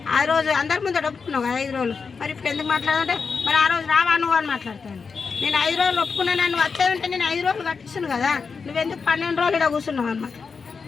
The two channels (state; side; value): quieter; right; 5.2 dB